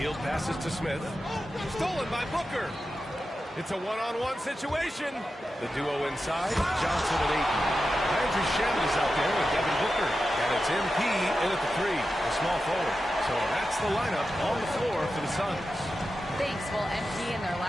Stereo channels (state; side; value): normal; both; correlation 0.91